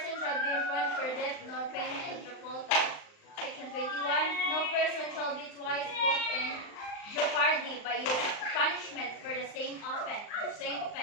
shall be imprisoned for debt nor payment of the poll tax. Section 21. No person shall be twice put in jeopardy by punishment for the same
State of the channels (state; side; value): late; right; 39 ms